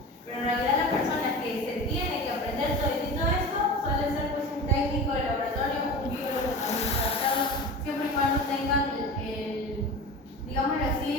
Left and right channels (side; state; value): both; normal; correlation 0.33